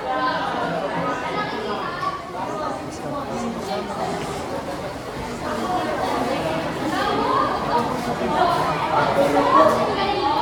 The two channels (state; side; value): identical; both; correlation 1.00